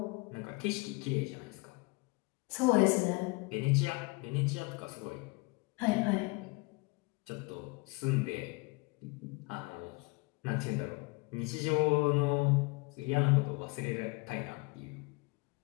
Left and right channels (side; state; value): right; quieter; 26.8 dB